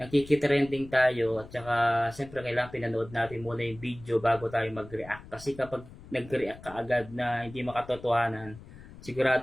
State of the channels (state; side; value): noise; left; rumble, 18 dB below the sound